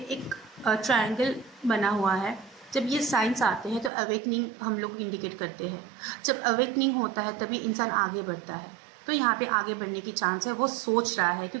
ट्रायंगल बना हुआ है। जब ये साइंस आते हैं तो अवेकनिंग हम लोग इंडिकेट करते हैं, जब अवेकनिंग होता है तभी इंसान आगे बढ़ता है। तो यहाँ पे आगे बढ़ने की चांस है, वो सोच रहा है,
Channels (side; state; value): left; drops out; at 3.9 s